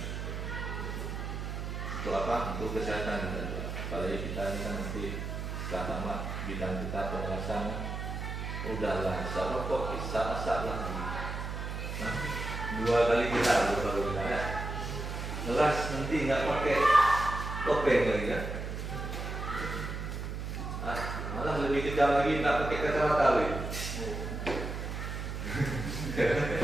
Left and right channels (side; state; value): right; noise; hum, 5 dB below the sound